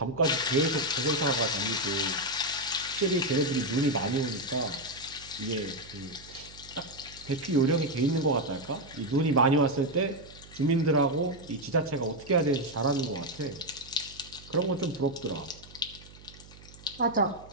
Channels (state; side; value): noise; right; hum, 20 dB below the sound